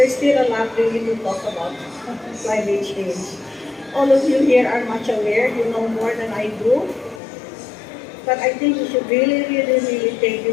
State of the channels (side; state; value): right; drops out; at 7.2 s